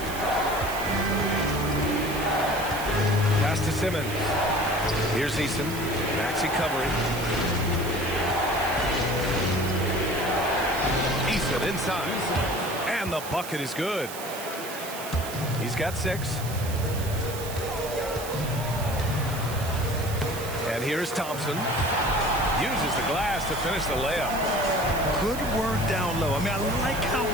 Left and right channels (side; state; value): right; noise; hiss, 11 dB below the sound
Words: Pass to Simmons. Here's Eason. Maxey covering. Eason inside. And the bucket is good. He's got 6. And here's Thompson. Uses the glass to finish the layup. Good work down low. I mean, I like how